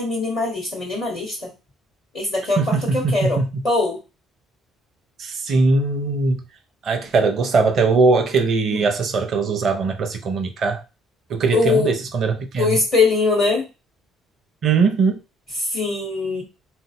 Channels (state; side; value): normal; both; correlation 0.63